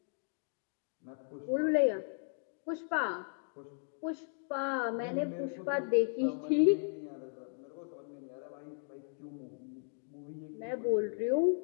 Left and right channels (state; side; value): silent; right; digital silence